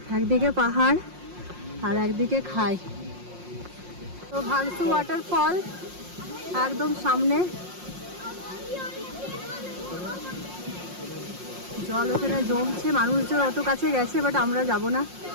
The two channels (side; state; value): left; late; 5.6 ms